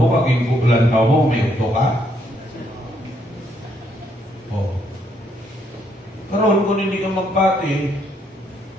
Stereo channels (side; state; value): both; normal; correlation 0.72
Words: kaging kuklan ka mo, may utok ka. Oh. Pero karon kung hindi ka magpati,